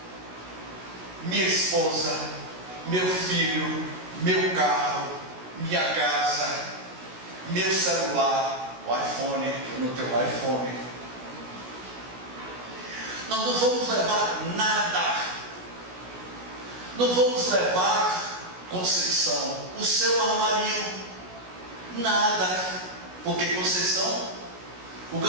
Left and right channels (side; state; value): left; late; 16 ms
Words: minha esposa, meu filho, meu carro, minha casa, meu celular, o iPhone, eu não tenho iPhone. Nós não vamos levar nada. Não vamos levar, Conceição, o seu armarinho, nada. Porque Conceição, o